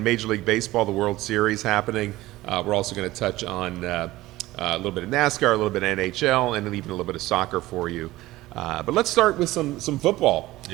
Major League Baseball, the World Series happening. We're also going to touch on a little bit of NASCAR, a little bit of NHL, and even a little bit of soccer for you. But let's start with some football.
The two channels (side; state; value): left; quieter; 17.5 dB